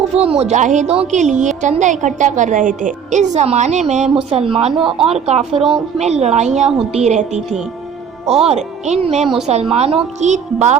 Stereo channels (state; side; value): quieter; left; 7.1 dB